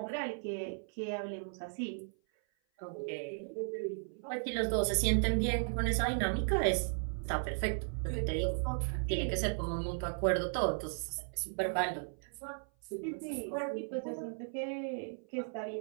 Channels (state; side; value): silent; left; 54 dB below the other